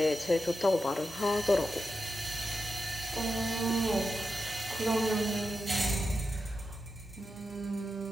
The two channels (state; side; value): normal; both; correlation 0.89